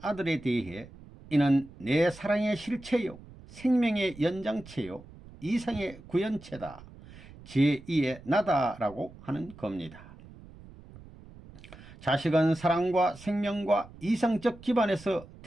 아들에 대해 이는 내 사랑의 실체요 생명의 연장체요 이상의 구현체다, 제2의 나다라고 하는 겁니다. 자식은 사랑과 생명과 이상적 기반에서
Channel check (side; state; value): right; noise; rumble, 19 dB below the sound